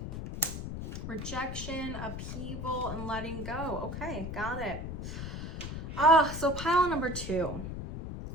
Rejection, upheaval, and letting go. Okay, got it. So pile number 2.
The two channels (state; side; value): noise; left; rumble, 6 dB below the sound